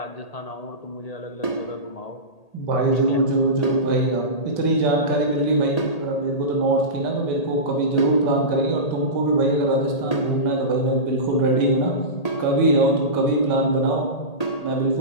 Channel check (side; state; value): right; late; 1.8 ms